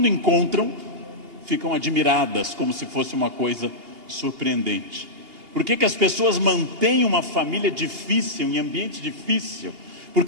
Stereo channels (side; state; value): left; late; 2.8 ms